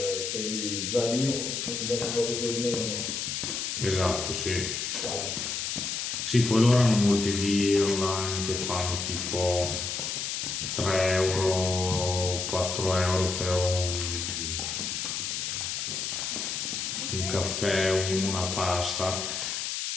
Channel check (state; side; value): noise; left; hiss, 2 dB below the sound